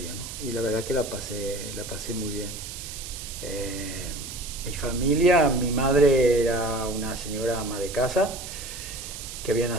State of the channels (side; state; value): right; noise; hiss, 10 dB below the sound